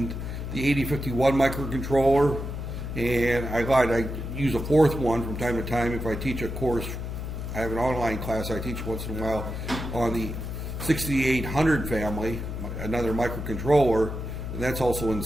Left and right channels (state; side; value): noise; left; hum, 5 dB below the sound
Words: the 8051 microcontroller, and I use a 4th one from time to time if I teach a course. I have an online class I teach once in a while on the 6800 family, another microcontroller, and that's also in